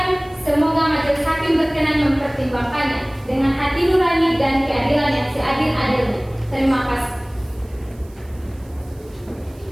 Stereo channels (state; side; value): noise; right; hiss, 29 dB below the sound